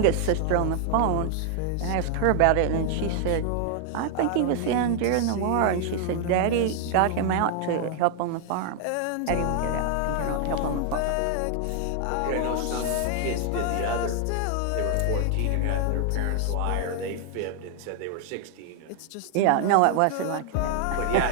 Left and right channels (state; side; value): different; both; correlation 0.00